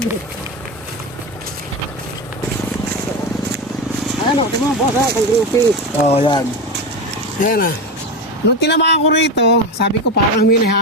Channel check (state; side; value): normal; both; correlation 0.19